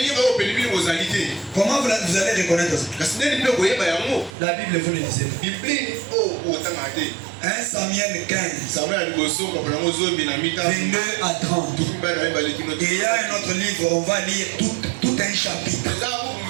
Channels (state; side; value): drops out; left; at 4.3 s